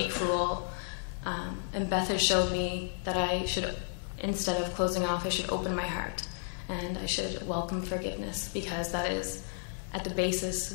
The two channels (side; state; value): right; silent; digital silence